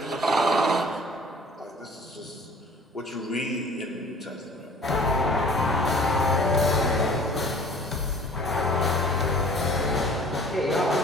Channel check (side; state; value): both; normal; correlation 0.48